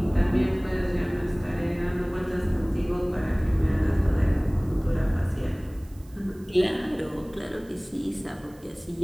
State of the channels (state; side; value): noise; right; hiss, 28 dB below the sound